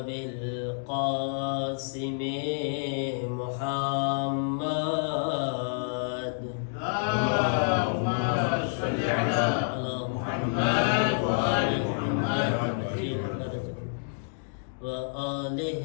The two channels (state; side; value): silent; right; digital silence